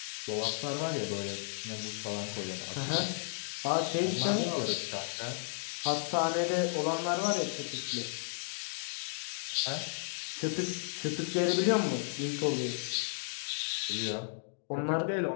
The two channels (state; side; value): silent; right; digital silence